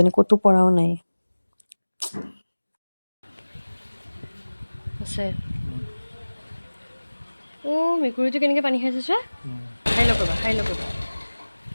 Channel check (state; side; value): inverted; both; correlation -1.00